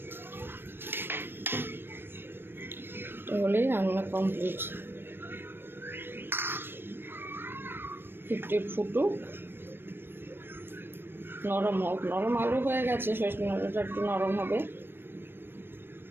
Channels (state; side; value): late; left; 0.10 ms